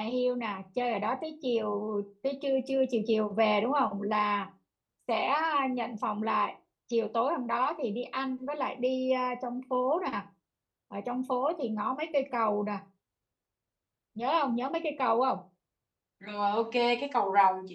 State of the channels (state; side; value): identical; both; correlation 1.00